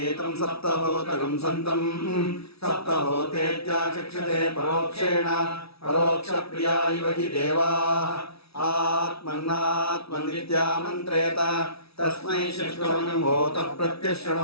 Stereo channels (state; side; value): late; right; 0.77 ms